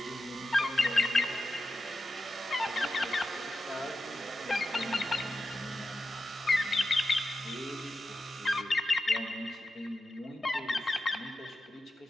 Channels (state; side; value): normal; both; correlation 0.91